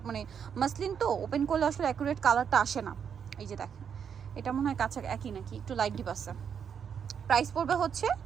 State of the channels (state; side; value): quieter; left; 7.5 dB